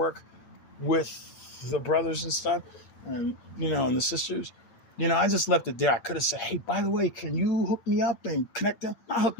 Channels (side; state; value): right; late; 8.6 ms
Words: with the brothers and stuff and, and the sisters. I just left it there. I could have said, hey, by the way, can you hook me up and connect them? Not hook